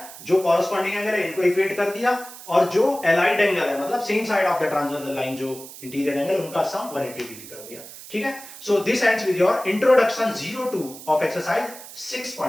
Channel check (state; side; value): noise; right; hiss, 15 dB below the sound